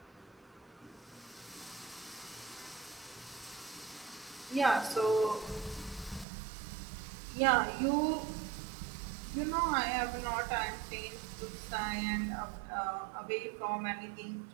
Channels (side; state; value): left; drops out; at 6.2 s